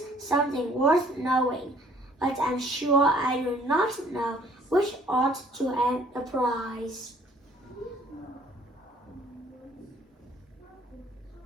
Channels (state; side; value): normal; both; correlation 0.59